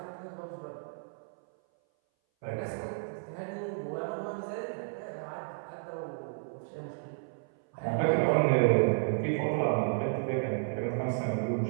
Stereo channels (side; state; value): left; silent; 56 dB below the other